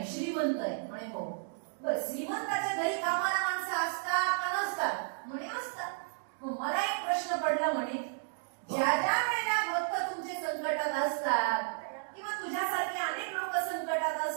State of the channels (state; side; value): silent; left; digital silence